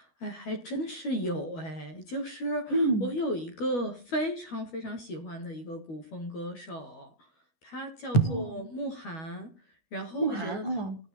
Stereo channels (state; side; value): late; right; 12 ms